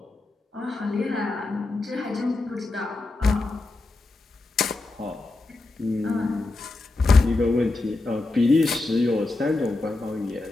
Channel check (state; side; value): quieter; right; 3.2 dB